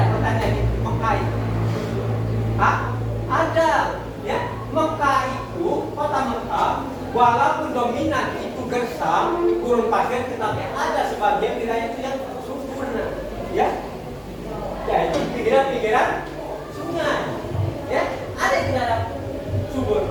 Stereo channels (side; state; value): both; identical; correlation 1.00